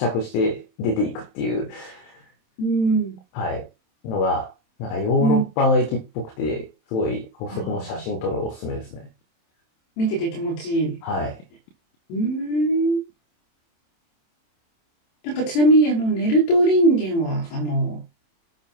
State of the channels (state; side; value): late; right; 27 ms